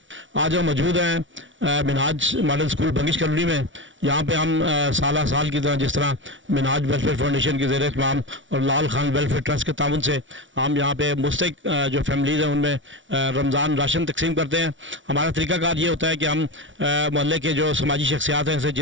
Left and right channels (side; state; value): left; late; 0.56 ms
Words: आज हम मौजूद हैं Minhaj model school Bangash colony में। यहाँ पे हम साल की तरह जिस तरह मिनहाज वेलफेयर फाउंडेशन के ज़रिए तमाम और लाल खान वेलफेयर ट्रस्ट के ताउन से हम यहाँ पे मुस्तहिक जो फैमिलीज़ हैं उनमें रमज़ान राशन तकसीम करते हैं। हमारा तरीक़ाकार ये होता है कि हम मोहल्ले के जो समाजी शख्सियात हैं, जैसे